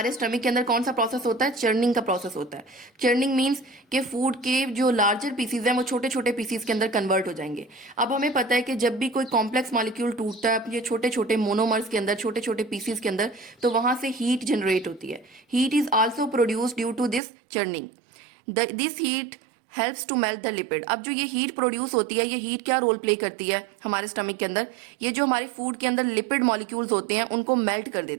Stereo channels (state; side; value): drops out; left; at 17.2 s